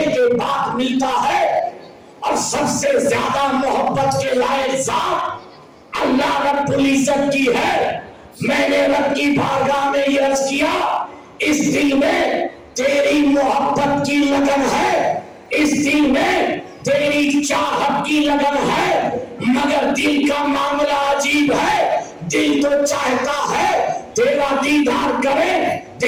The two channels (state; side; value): identical; both; correlation 1.00